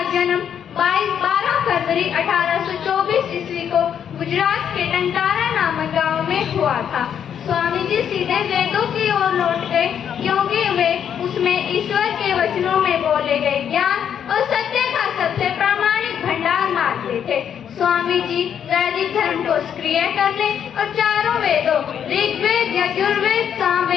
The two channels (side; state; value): right; quieter; 8.6 dB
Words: जन्म 12 फरवरी 1824 ईस्वी को गुजरात के टंकारा नामक गांव में हुआ था। स्वामी जी सीधे वेदों की ओर लौट गए क्योंकि वे उसमें ईश्वर के वचनों में बोले गए ज्ञान और सत्य का सबसे प्रामाणिक भंडार मानते थे। स्वामी जी वैदिक धर्म को सक्रिय करने और चारों वेदों ऋग्वेद, यजुर्वेद,